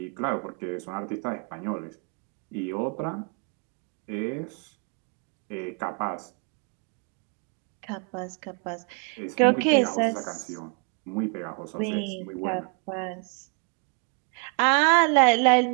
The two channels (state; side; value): quieter; left; 34.6 dB